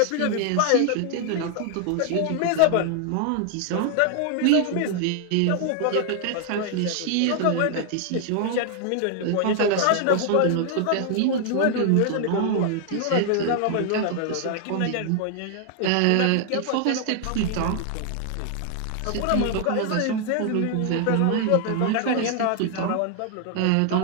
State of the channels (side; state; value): both; different; correlation 0.00